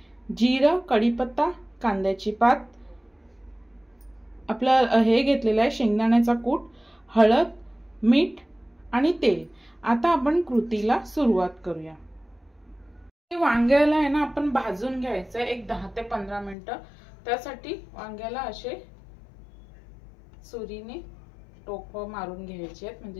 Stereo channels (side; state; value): right; drops out; at 16.6 s